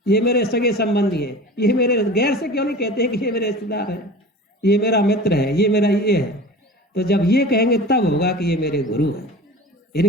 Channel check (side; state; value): both; normal; correlation 0.37